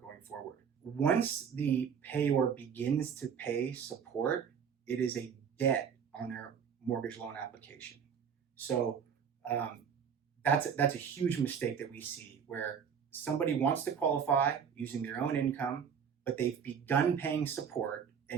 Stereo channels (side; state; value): left; quieter; 7.3 dB